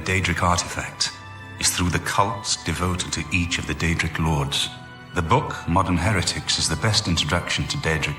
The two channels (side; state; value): both; identical; correlation 1.00